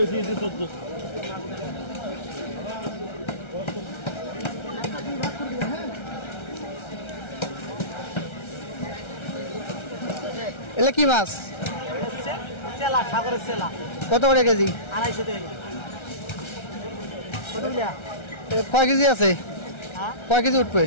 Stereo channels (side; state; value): right; late; 1.3 ms